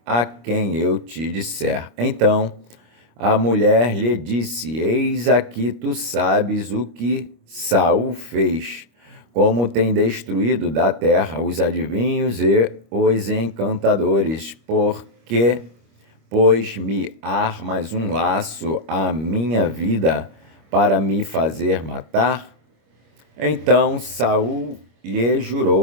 a quem eu te disser. Então a mulher lhe disse: Eis aqui tu sabes o que Saul fez, como tem destruído da terra os adivinhos e os encantadores, porque, pois me armas um laço à minha vida para me fazer matar? Então Saul lhe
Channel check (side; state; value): left; late; 25 ms